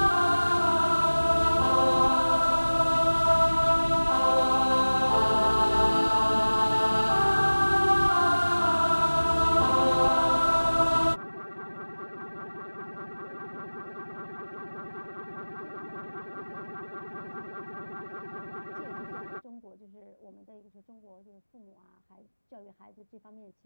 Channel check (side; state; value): both; inverted; correlation -1.00